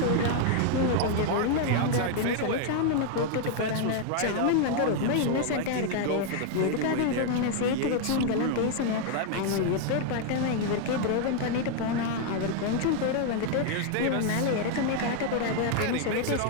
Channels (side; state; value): both; different; correlation 0.00